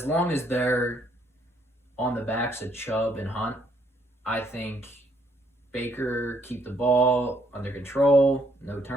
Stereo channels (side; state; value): both; normal; correlation 0.70